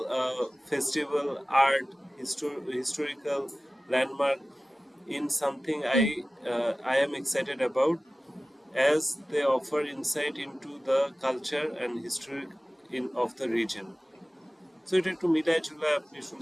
festival, art, historical landmark in something Hmm. I am excited about, as they offer insight into the culture and history of the region. So এটা একটু মিলাই ঝুলাই আপনি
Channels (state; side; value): normal; both; correlation 0.97